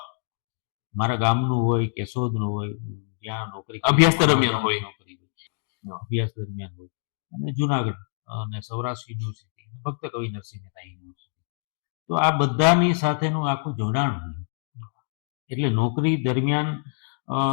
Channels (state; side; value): silent; right; 61 dB below the other